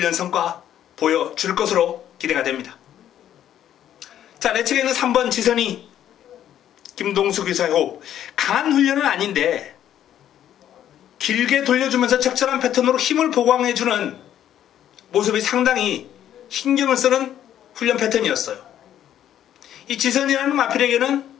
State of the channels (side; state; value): right; quieter; 10.9 dB